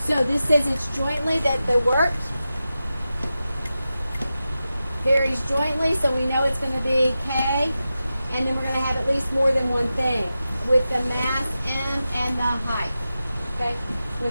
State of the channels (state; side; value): inverted; both; correlation -0.92